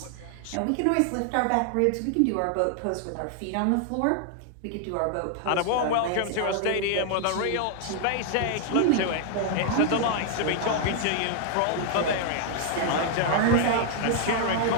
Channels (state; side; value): different; both; correlation 0.00